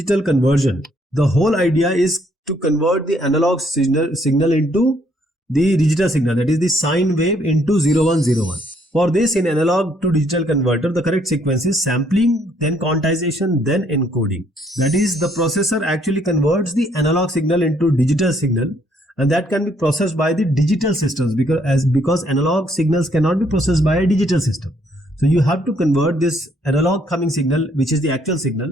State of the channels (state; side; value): normal; both; correlation 0.68